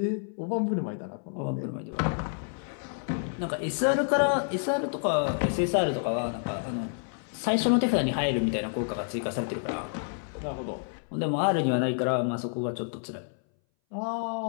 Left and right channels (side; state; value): right; silent; 59 dB below the other